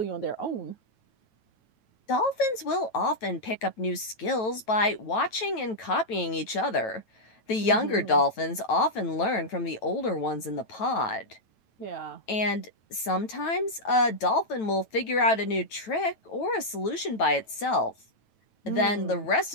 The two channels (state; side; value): late; right; 9.1 ms